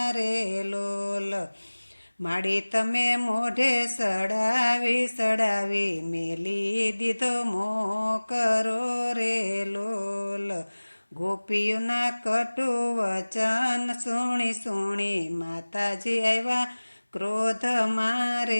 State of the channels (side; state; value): both; inverted; correlation -1.00